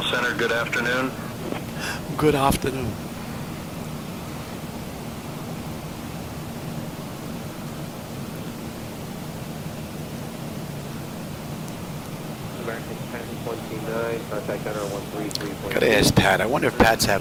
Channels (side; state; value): both; identical; correlation 1.00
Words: Center, good afternoon. Good afternoon. American 1029, contact center 133. Gotta ask Pat. I wonder if Pat's